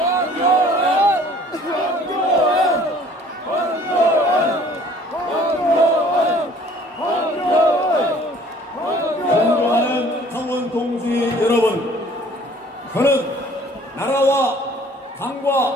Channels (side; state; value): both; normal; correlation 0.53